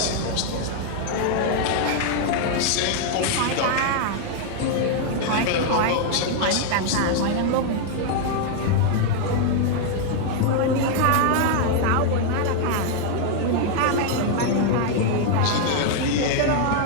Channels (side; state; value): both; different; correlation 0.00